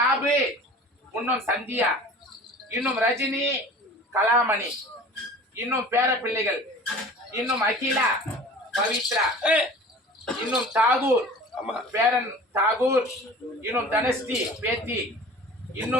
இன்னும் சந்தியா, இன்னும் ரஜினி, கலாமணி, இன்னும் பேர பிள்ளைகள், இன்னும் அகிலா, பவித்ரா, இன்னும் தாகூர், பேரன் தாகூர், இன்னும் தனஸ்ரீ பேத்தி,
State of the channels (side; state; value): both; normal; correlation 0.42